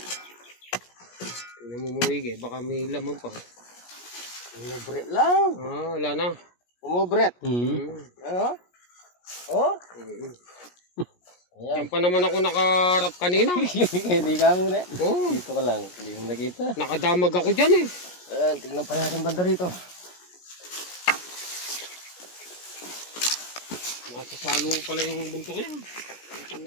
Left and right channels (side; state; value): right; late; 17 ms